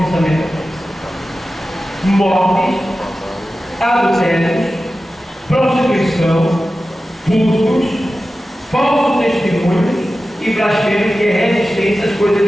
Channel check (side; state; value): both; normal; correlation 0.94